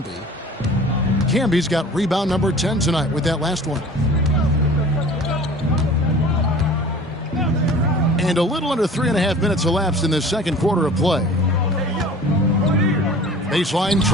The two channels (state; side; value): normal; both; correlation 0.43